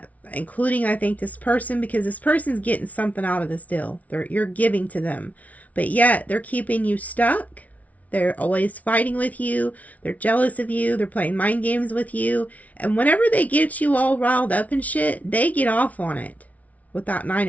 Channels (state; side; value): late; right; 0.070 ms